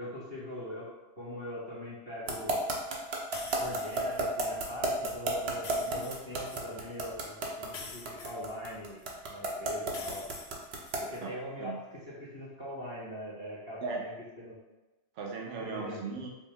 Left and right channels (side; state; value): left; late; 2.9 ms